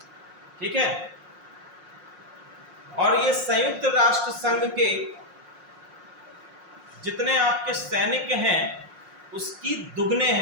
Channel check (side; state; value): left; late; 5.6 ms